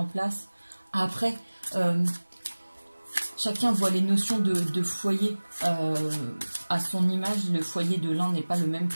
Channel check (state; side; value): inverted; both; correlation -1.00